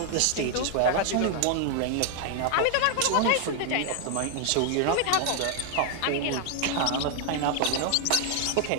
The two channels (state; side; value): different; both; correlation 0.00